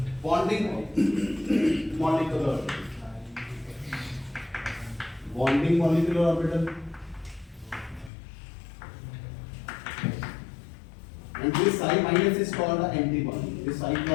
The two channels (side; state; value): right; drops out; at 8.1 s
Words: bonding molecular orbital. And this psi minus is called a anti-bonding. This psi